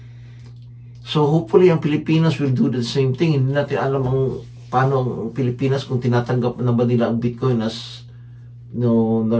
So hopefully ang Pilipinas will do the same thing. Hindi natin alam paano ang Pilipinas kung tinatanggap na ba nila ang Bitcoin as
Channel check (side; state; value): both; identical; correlation 1.00